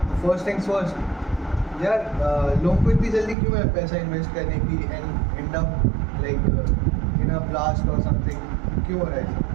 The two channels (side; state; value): left; drops out; at 3.4 s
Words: first things first. यार लोगों को इतनी जल्दी क्यों है पैसा इन्वेस्ट करने की and and up like in a blast और समथिंग क्यों हो रहा है ऐसा?